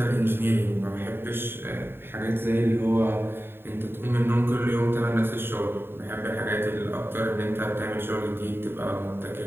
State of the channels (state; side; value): late; left; 0.11 ms